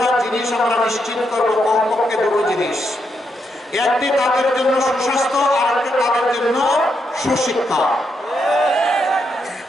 জিনিস আমরা নিশ্চিত করবো, কমপক্ষে 2টো জিনিস। একটি তাদের জন্য সুস্বাস্থ্য, আর একটি তাদের জন্য সুশিক্ষা।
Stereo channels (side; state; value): both; normal; correlation 0.80